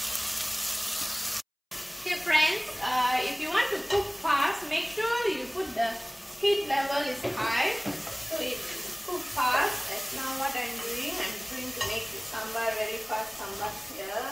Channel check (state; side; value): identical; both; correlation 1.00